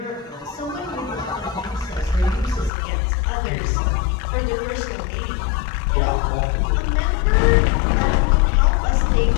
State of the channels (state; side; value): drops out; right; at 2.7 s